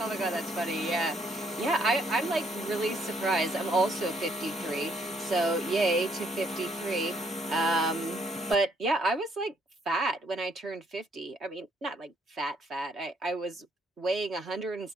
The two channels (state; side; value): normal; both; correlation 0.69